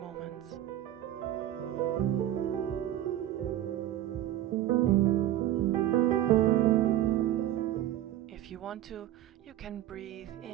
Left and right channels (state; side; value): quieter; left; 13.0 dB